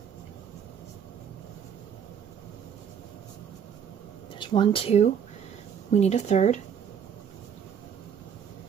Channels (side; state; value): left; quieter; 7.8 dB